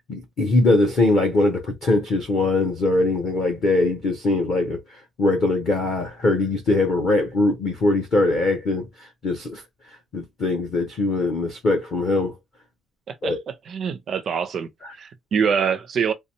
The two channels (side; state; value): both; normal; correlation 0.68